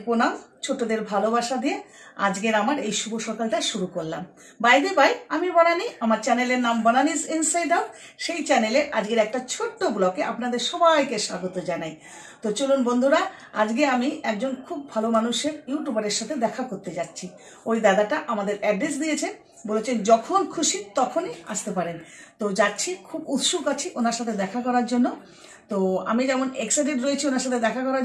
প্রণাম, ছোটদের ভালোবাসা দিয়ে আজকের আমার এই শুভ সকালটা শুরু করলাম। বাই দ্য বাই, আমি বনানী, আমার চ্যানেলের নাম বনানীজ ইনসাইড আউট। সেই চ্যানেলে আজকের একটা ছোট্ট ব্লগে আপনাদের সবাইকে স্বাগত জানাই। তো চলুন বন্ধুরা, আজকে আমি একজন খুব ভালো মানুষের ইউটিউবারের সাথে দেখা করতে যাচ্ছি। ওই দাদাটা আমাদের অ্যাড্রেস দিয়েছেন, বলেছেন যখন খুশি তখনই আসতে পারেন। তো যাচ্ছি, খুব উৎসুক আছি ওনার সাথে দেখা করার জন্য। তো আমি যেমন এক্সাইটেড রয়েছি ওনার সাথে দেখা করার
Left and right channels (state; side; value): identical; both; correlation 1.00